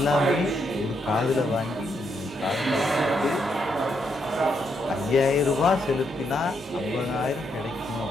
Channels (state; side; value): normal; both; correlation 0.78